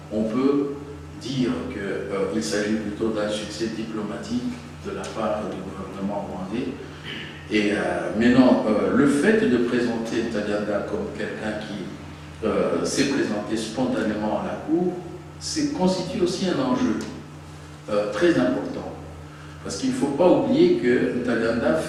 on peut dire qu'il s'agit plutôt d'un succès diplomatique de la part du gouvernement rwandais. Et maintenant, le fait de présenter Ntaganda comme quelqu'un qui s'est présenté spontanément à la Cour, constitue aussi un enjeu très important. Parce qu'il ne faut pas oublier que Ntaganda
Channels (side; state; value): both; identical; correlation 1.00